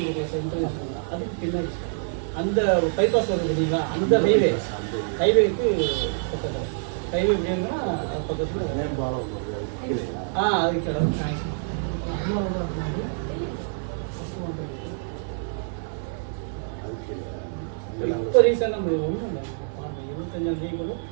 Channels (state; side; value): silent; left; digital silence